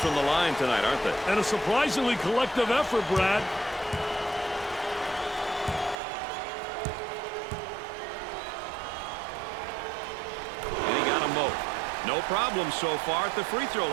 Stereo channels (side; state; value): left; drops out; at 6.0 s